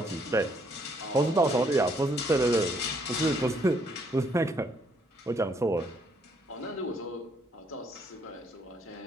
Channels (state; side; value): normal; both; correlation 0.69